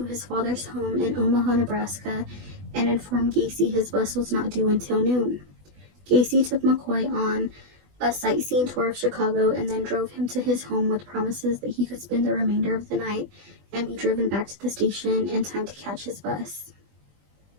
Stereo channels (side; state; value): left; late; 20 ms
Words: his father's home in Omaha, Nebraska, and informed Gacy his bus was not due until noon. Gacy took McCoy on a sightseeing tour of Chicago and then drove him to his home with promises that he could spend the remainder of the night and be driven back to the station in time to catch his bus.